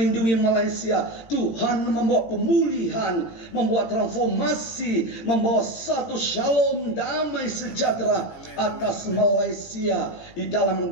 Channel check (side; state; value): right; late; 18 ms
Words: Malaysia, Tuhan membawa pemulihan, membawa transformasi, membawa satu shalom, damai sejahtera atas Malaysia. Di